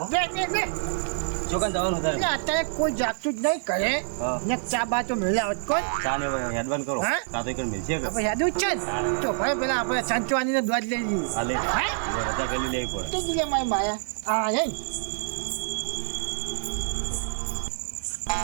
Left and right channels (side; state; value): left; silent; 58 dB below the other